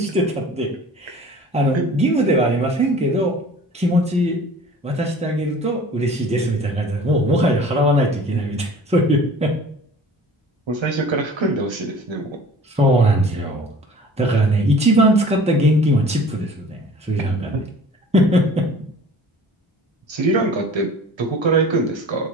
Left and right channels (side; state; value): both; normal; correlation 0.45